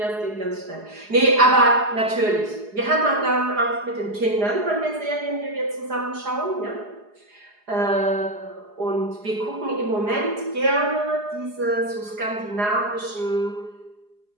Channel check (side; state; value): left; late; 4.8 ms